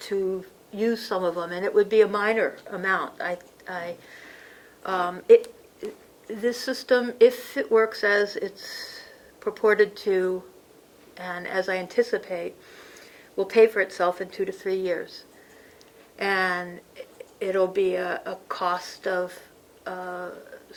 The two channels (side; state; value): both; identical; correlation 1.00